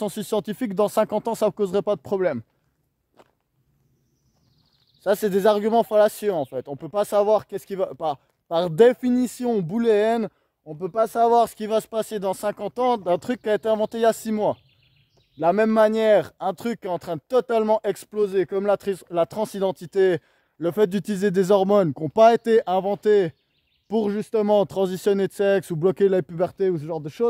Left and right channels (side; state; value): both; identical; correlation 1.00